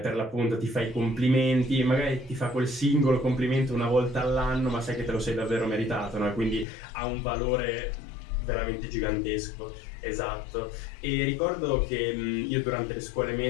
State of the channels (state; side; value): drops out; right; at 6.7 s